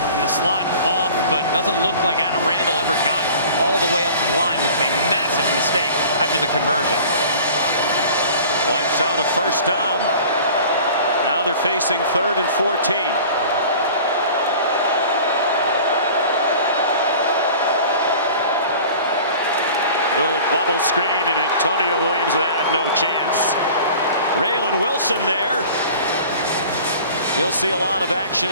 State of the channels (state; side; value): inverted; both; correlation -0.44